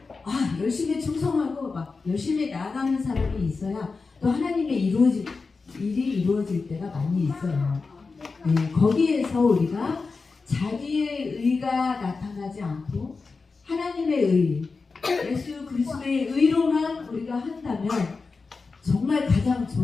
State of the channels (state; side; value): quieter; right; 4.3 dB